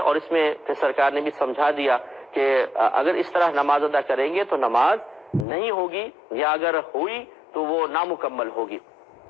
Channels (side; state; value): right; drops out; at 5.5 s